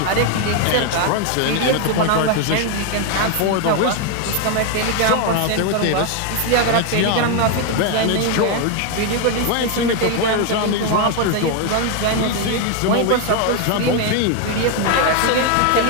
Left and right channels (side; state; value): both; different; correlation 0.01